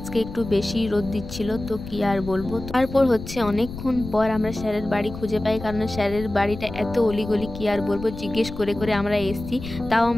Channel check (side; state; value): left; noise; rumble, 11 dB below the sound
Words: একটু বেশি রোদ দিচ্ছিল, তো কি আর বলবো। তারপর হচ্ছে অনেকক্ষণ পর আমরা স্যারের বাড়ি খুঁজে পাই, কারণ স্যারের বাড়িটা এত অলিগলি কি আর বলবো, জিজ্ঞেস করে করে আমরা এসছি, তাও